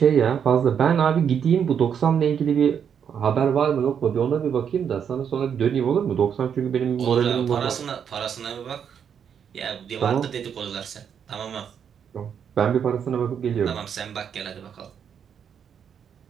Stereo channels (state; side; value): quieter; left; 7.8 dB